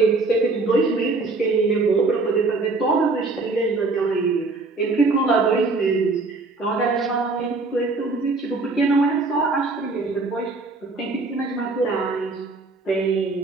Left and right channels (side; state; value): left; quieter; 3.6 dB